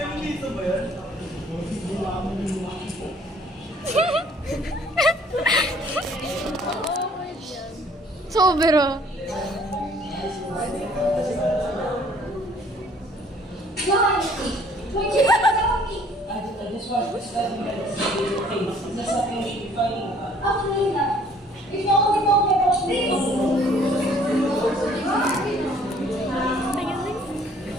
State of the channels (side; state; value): both; normal; correlation 0.58